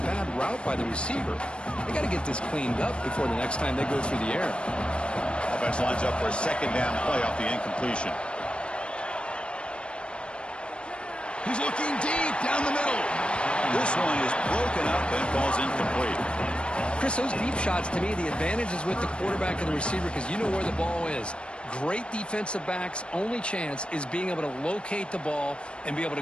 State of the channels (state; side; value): late; right; 0.057 ms